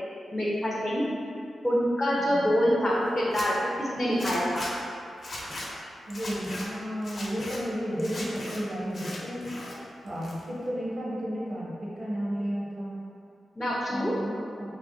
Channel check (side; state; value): both; normal; correlation 0.92